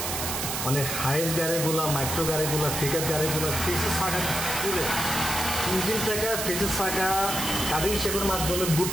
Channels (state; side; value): noise; right; hiss, 2 dB below the sound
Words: মানে হাইস গাড়িগুলো, মাইক্রো গাড়িগুলো, পিকআপ গাড়িগুলো ফেসের চাকা খুলে ইঞ্জিন চাকা ফেসের চাকা কাটিং শেপের মাধ্যমে